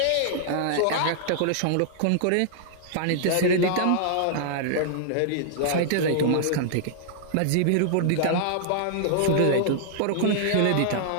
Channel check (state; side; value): different; both; correlation -0.01